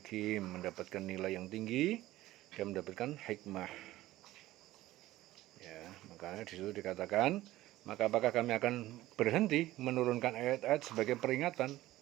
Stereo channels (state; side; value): quieter; left; 16.1 dB